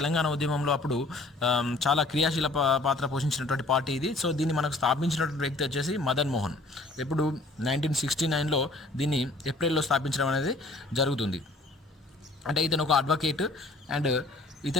ఉద్యమంలో అప్పుడు చాలా క్రియాశీల పాత్ర పోషించినటువంటి పార్టీ ఇది. సో దీన్ని మనకు స్థాపించినటువంటి వ్యక్తి వచ్చేసి మదన్ మోహన్. ఇప్పుడు 1969లో దీన్ని ఏప్రిల్లో స్థాపించడం అనేది జరుగుతుంది. అంటే ఇతను ఒక అడ్వకేట్ అండ్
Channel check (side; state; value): right; quieter; 3.0 dB